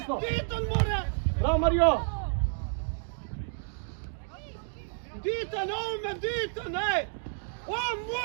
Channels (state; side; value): silent; left; digital silence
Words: Diton more! Bravo, Mario! Diton, ovome, Diton, ej! On